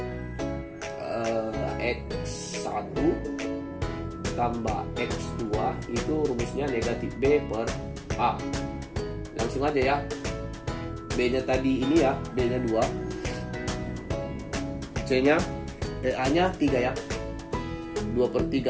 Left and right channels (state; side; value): identical; both; correlation 1.00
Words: X1 tambah X2 itu rumusnya negatif B per A. Langsung aja ya. B-nya tadi ini ya, B-nya 2. C-nya, A-nya 3 ya. 2 per